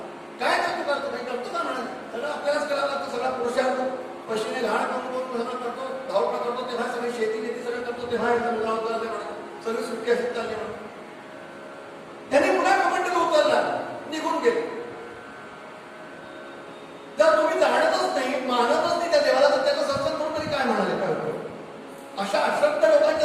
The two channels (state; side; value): identical; both; correlation 1.00